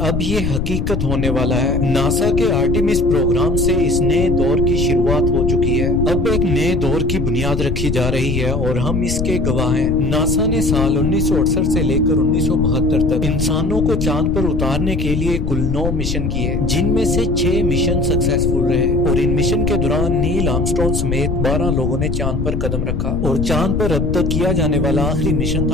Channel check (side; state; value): left; noise; rumble, 1 dB below the sound